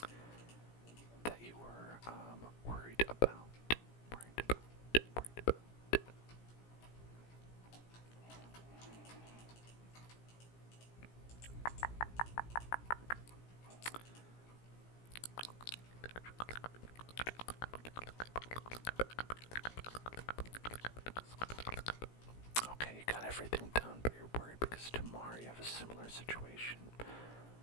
that you were worried about. Okay, you got everything done, but you're worried because tomorrow you have a similar situation.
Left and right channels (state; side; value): late; right; 17 ms